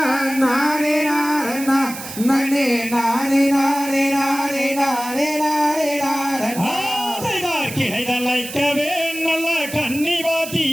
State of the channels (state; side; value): noise; right; hiss, 11 dB below the sound